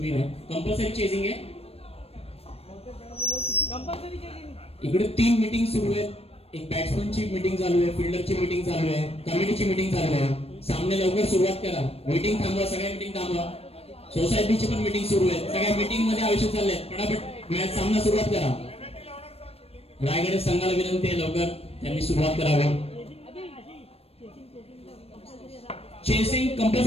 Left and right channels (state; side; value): late; right; 0.29 ms